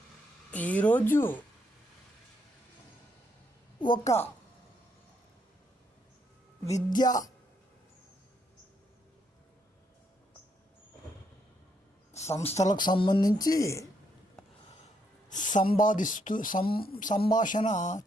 ఈరోజు ఒక విద్యా సంస్థలకు సంబంధించి సంభాషణ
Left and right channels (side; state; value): both; normal; correlation 0.75